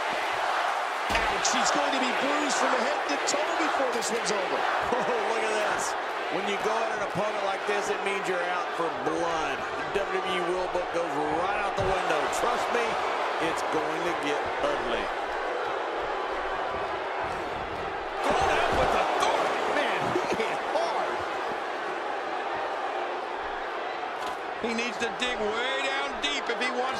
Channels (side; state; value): both; identical; correlation 1.00